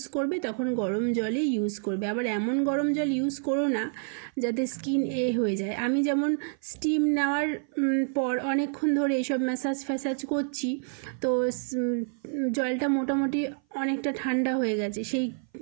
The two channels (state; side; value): silent; left; 57 dB below the other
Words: করবে তখন গরম জলই ইউজ করবে। আবার এমন গরম জল ইউজ করো না যাতে স্কিন হয়ে যায়। আমি যেমন স্টিম নেওয়ার পর অনেকক্ষণ ধরে এইসব ম্যাসাজ করছি, তো জলটা মোটামুটি অনেকটা ঠান্ডা হয়ে গেছে, সেই